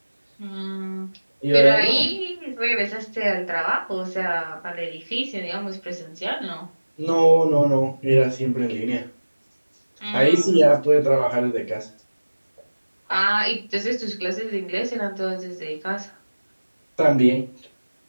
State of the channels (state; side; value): inverted; both; correlation -1.00